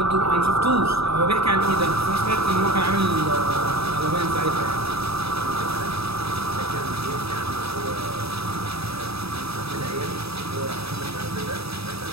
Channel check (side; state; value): left; late; 0.77 ms